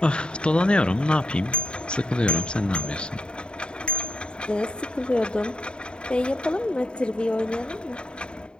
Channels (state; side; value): late; right; 0.051 ms